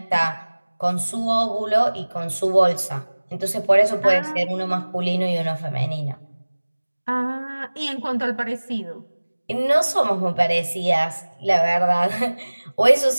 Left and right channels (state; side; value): inverted; both; correlation -1.00